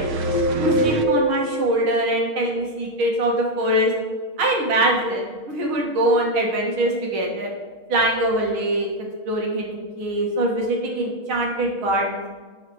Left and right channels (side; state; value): left; late; 6.4 ms